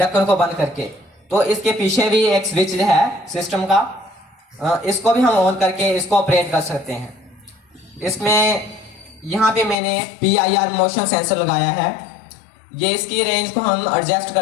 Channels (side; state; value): right; drops out; at 9.8 s